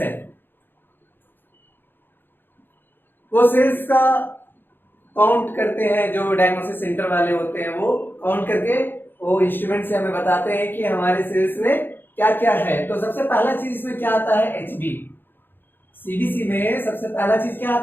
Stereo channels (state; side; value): late; right; 0.098 ms